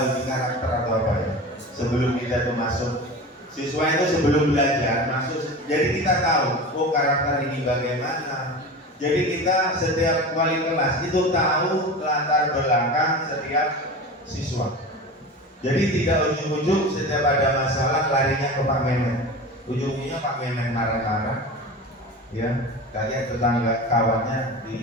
uji karakter atau apa ya? Sebelum kita tuh masuk, siswa itu sebelum belajar masuk, jadi kita tahu, karakter ini bagaimana. Jadi kita setiap wali kelas itu tahu latar belakang setiap siswa. Jadi tidak ujung-ujung setiap ada masalah larinya ke Pak Memet. Ujungnya Pak Memet marah-marah, ya, kayak tetangga kawannya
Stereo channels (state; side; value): normal; both; correlation 0.31